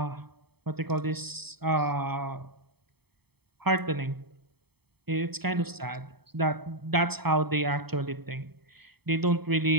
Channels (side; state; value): left; late; 0.97 ms